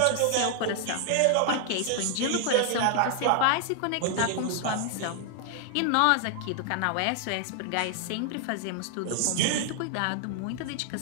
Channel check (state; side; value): different; both; correlation 0.00